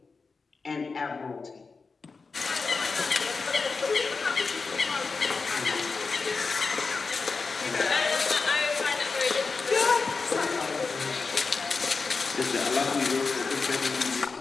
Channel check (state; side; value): quieter; right; 4.5 dB